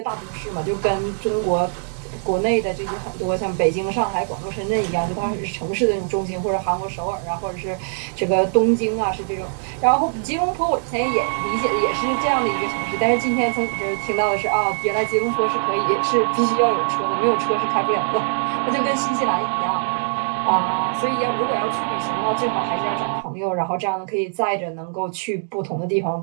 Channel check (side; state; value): left; silent; digital silence